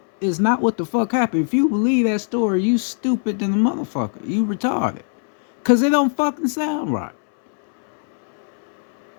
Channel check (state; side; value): silent; right; 65 dB below the other